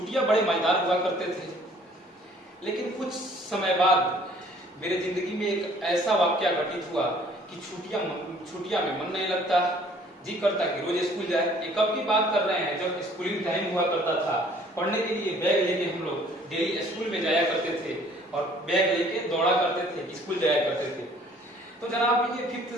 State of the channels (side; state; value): both; normal; correlation 0.56